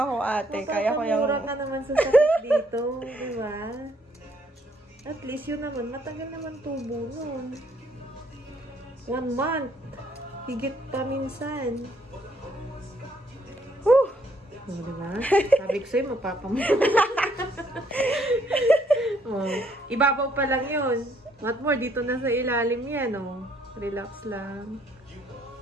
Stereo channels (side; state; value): both; normal; correlation 0.68